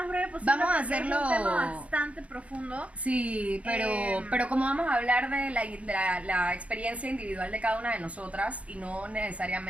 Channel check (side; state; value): left; late; 0.064 ms